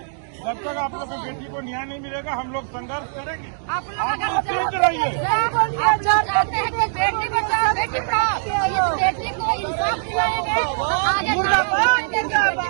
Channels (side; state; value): left; silent; digital silence